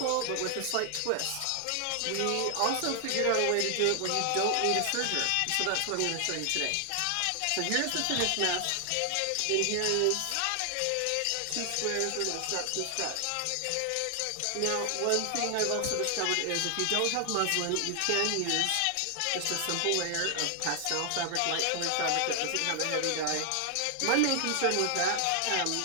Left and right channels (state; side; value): different; both; correlation 0.00